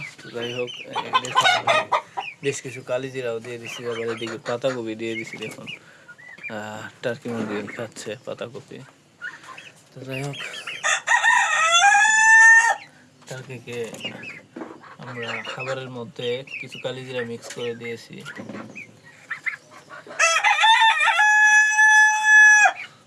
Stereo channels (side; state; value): both; identical; correlation 1.00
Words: তো যাই হোক, বেশ কিছু কালিজিরাও দিয়ে দিচ্ছি, আবার এদিকে পাতাকপি দিয়ে দিচ্ছি। দেখুন টার্কি মুরগি খাচ্ছে পাতাকপি। তো যাই হোক, টার্কিকে আমরা খাবারের মধ্যে কিছু কালিজিরা মিক্স করে দিয়েছি।